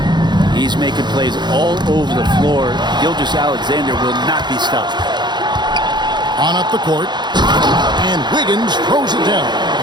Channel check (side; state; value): left; late; 0.21 ms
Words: He's making plays all over the floor. Gilgeous-Alexander will not be stopped. On up the court. And Wiggins throws it down.